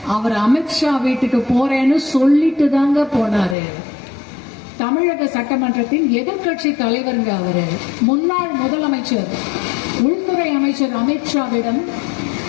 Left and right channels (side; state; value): right; drops out; at 3.6 s